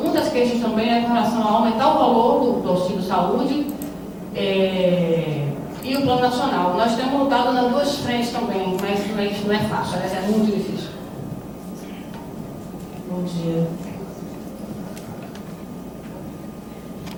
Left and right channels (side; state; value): both; identical; correlation 1.00